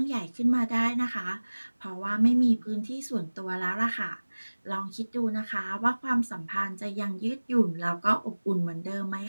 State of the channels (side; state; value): both; inverted; correlation -1.00